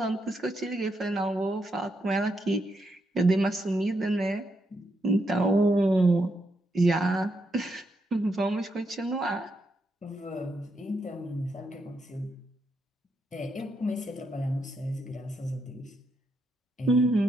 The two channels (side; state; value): both; normal; correlation 0.80